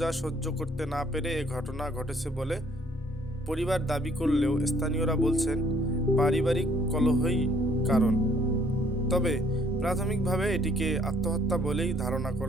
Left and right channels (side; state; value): both; normal; correlation 0.62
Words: সহ্য করতে না পেরে এ ঘটনা ঘটেছে বলে পরিবার দাবি করলেও স্থানীয়রা বলছেন পারিবারিক কলহই কারণ। তবে প্রাথমিকভাবে এটিকে আত্মহত্যা বলেই ধারণা